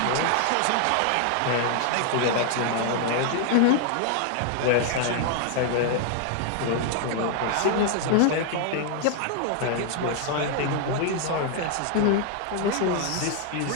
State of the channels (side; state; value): both; different; correlation 0.00